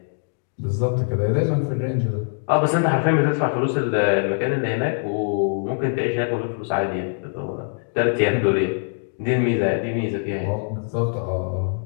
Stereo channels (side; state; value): right; silent; digital silence